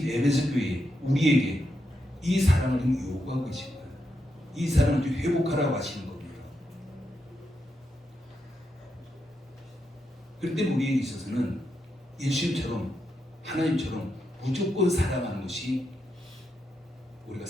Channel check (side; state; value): both; normal; correlation 0.84